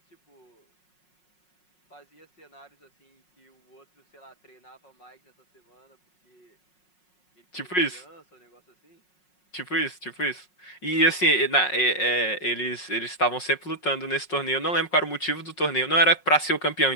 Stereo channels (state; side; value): late; right; 5.5 ms